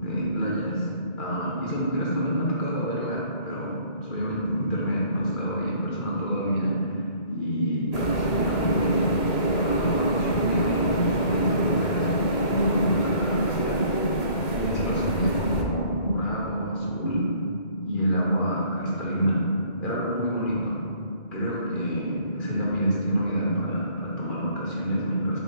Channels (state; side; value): late; right; 2.2 ms